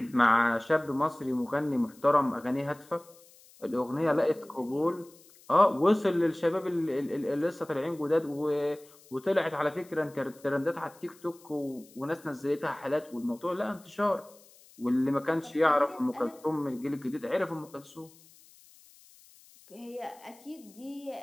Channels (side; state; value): left; noise; hiss, 25 dB below the sound